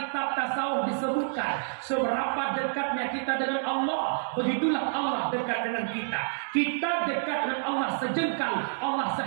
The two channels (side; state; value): left; silent; digital silence